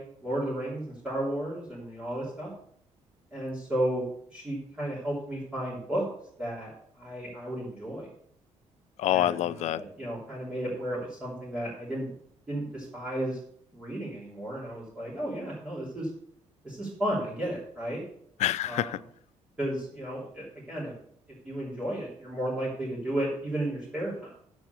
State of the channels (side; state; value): both; normal; correlation 0.61